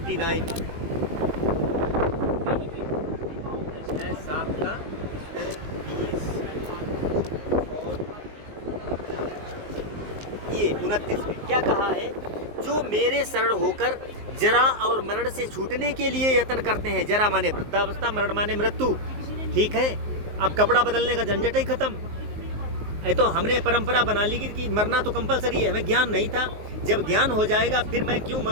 अध्याय 7 का श्लोक 20 और ये 29 में क्या कहा है? जो मेरे शरण होकर जरा और मरण से छूटने के लिए यत्न करते हैं। जरा माने वृद्धावस्था, मरण माने मृत्यु। ठीक है, अब कपड़ा बदलने का झंझट ही खत्म। ये तो हमने परंपरा बना ली कि मरना तो कंपलसरी है, हमें ज्ञान नहीं था। जब ज्ञान हो जाएगा फिर मैं क्यों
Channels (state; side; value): late; left; 19 ms